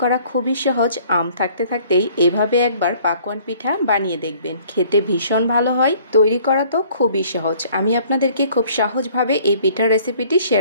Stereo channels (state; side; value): inverted; both; correlation -0.56